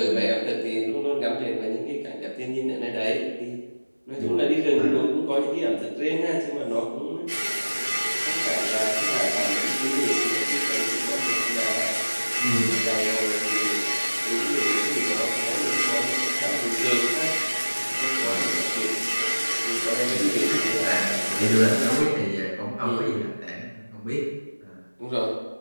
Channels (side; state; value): both; inverted; correlation -1.00